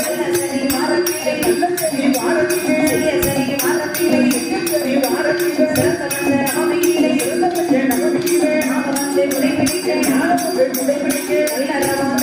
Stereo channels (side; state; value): both; identical; correlation 1.00